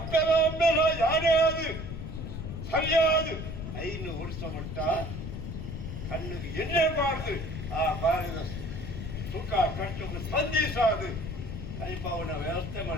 ಯಾರೇ ಅದು ಸರಿಯಾದ 5 ವರ್ಷ ಮಟ್ಟ ಕಣ್ಣಿಗೆ ಎಣ್ಣೆ ಮಾಡ್ದು ಆ ಬಾರದ ಸುಖ ಕಷ್ಟಕ್ಕೆ ಸ್ಪಂದಿಸಾದು ಕೈಪವನ ವ್ಯವಸ್ಥೆ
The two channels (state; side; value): noise; left; rumble, 7 dB below the sound